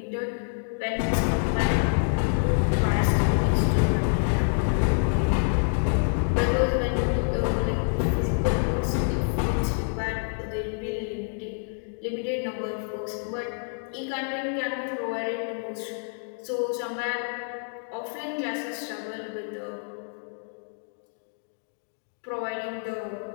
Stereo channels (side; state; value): right; silent; 60 dB below the other